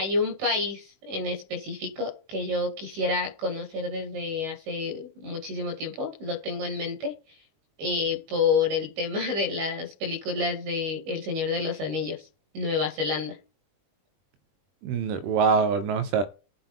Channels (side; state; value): left; late; 20 ms